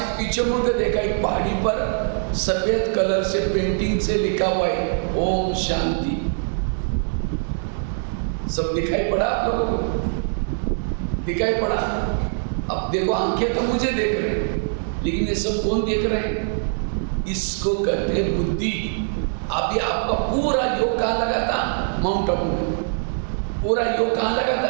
पीछे मुड़ के देखा एक पहाड़ी पर सफ़ेद कलर से पेंटिंग से लिखा हुआ है ओम शांति। सब दिखाई पड़ा आप लोगों को? दिखाई पड़ा? अब देखो, आंखें तो मुझे देख रहे हैं, लेकिन ये सब कौन देख रहे हैं? इसको कहते हैं बुद्धि। अभी आपका पूरा योग कहाँ लगा था? माउंट आबू में। पूरा योग कहाँ लगा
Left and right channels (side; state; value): left; silent; digital silence